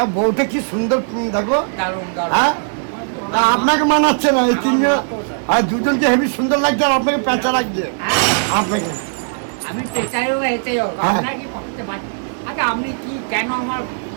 বউটা কি সুন্দর দেখো। দারুণ দারুণ। হ্যাঁ, আপনাকে মানাচ্ছে না এই তিনজন, আর দুজনকে হেভি সুন্দর লাগছে, আর আপনাকে পেঁচা লাগছে আপনাকে। আমি পেঁচাই হোক এটাই হোক, আপনার কি করতে পারছি? আচ্ছা আপনি কি কেন আমার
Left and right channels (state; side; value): silent; left; digital silence